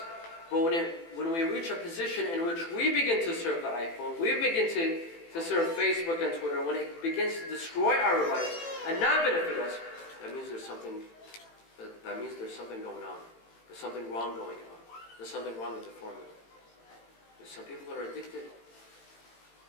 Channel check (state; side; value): late; right; 18 ms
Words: But when we reach a position in which we begin to serve the iPhone, we begin to serve Facebook and Twitter, when it begins to destroy our lives and not benefit us, that means there's something going on. There's something wrong going on. There's something wrong with the formula. There's some people that are addicted.